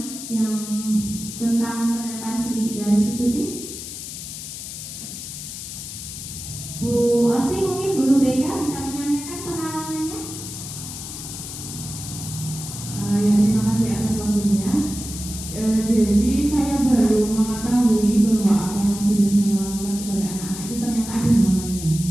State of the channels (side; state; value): left; noise; hiss, 9 dB below the sound